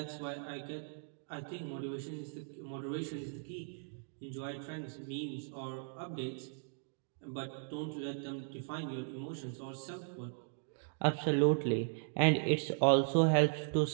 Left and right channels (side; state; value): left; silent; digital silence